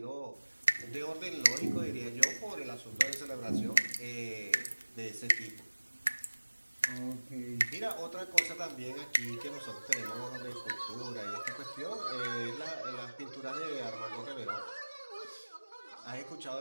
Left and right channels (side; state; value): both; inverted; correlation -1.00